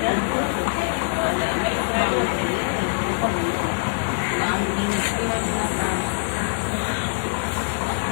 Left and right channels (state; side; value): silent; right; 63 dB below the other